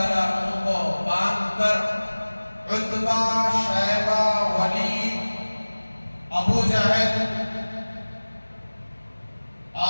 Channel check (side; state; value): both; inverted; correlation -1.00